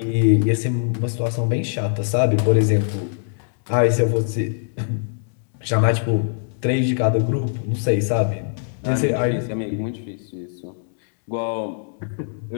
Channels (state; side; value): silent; right; 64 dB below the other